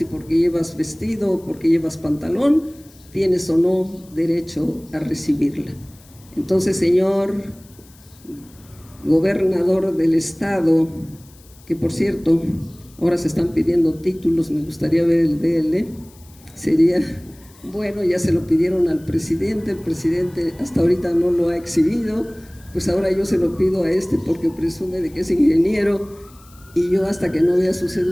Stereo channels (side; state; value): left; noise; hiss, 26 dB below the sound